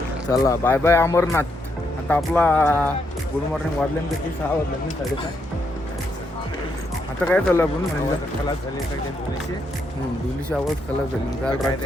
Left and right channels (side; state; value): both; normal; correlation 0.78